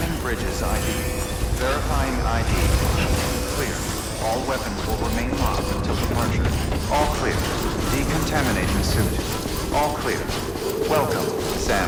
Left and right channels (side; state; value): both; identical; correlation 1.00